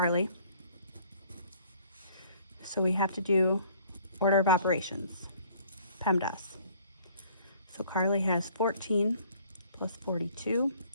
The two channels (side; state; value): both; inverted; correlation -0.58